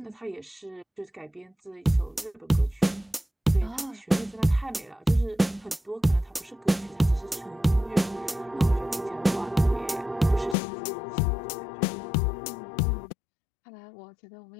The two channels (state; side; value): drops out; right; at 10.6 s